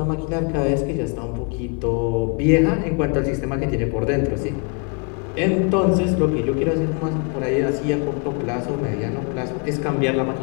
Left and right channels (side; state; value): right; quieter; 35.3 dB